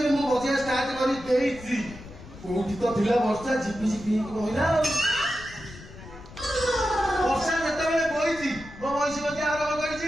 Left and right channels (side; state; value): left; noise; rumble, 16 dB below the sound